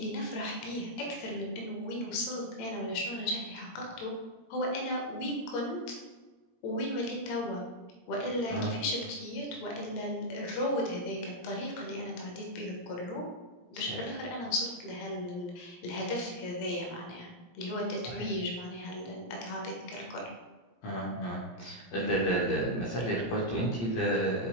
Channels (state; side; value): late; right; 17 ms